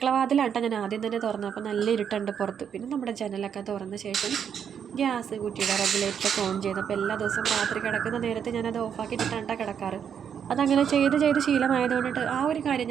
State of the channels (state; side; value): quieter; left; 7.9 dB